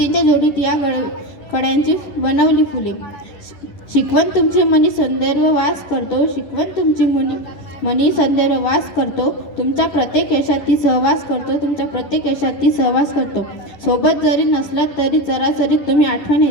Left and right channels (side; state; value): right; late; 11 ms